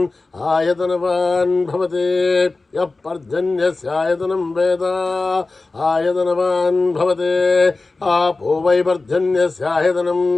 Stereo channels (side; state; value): right; quieter; 3.5 dB